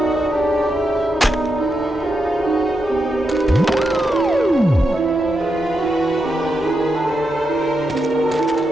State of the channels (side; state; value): both; normal; correlation 0.85